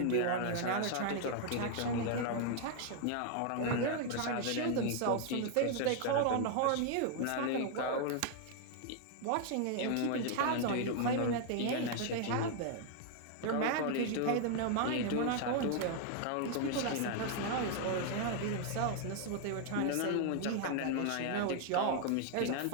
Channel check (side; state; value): both; different; correlation 0.00